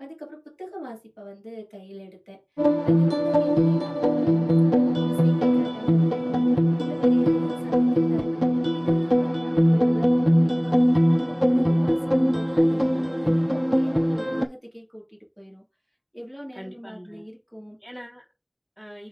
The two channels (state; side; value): identical; both; correlation 1.00